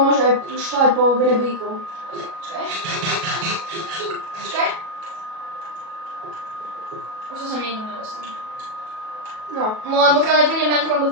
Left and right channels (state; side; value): late; left; 37 ms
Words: môže aj šľať po rebríku. Počkaj. Počkaj. Už to som nikdy nedostal. No. No len pokiaľ nepríde Man from the